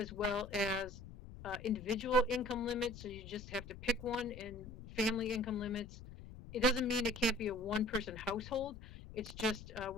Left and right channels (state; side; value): noise; left; rumble, 14 dB below the sound